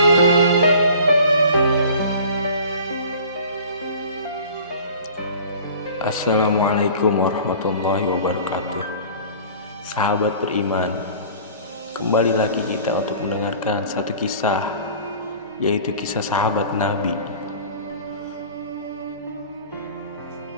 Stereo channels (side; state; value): both; inverted; correlation -0.44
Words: Assalamualaikum warahmatullahi wabarakatuh. Sahabat beriman, kembali lagi kita untuk mendengarkan satu kisah, yaitu kisah sahabat Nabi.